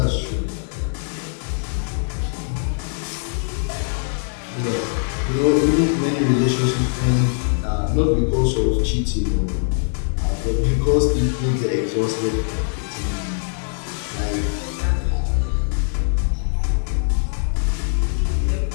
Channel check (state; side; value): silent; right; digital silence